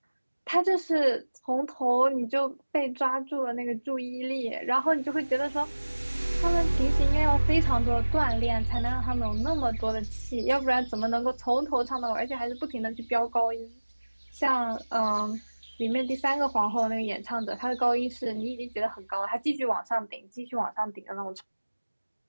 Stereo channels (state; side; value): inverted; both; correlation -1.00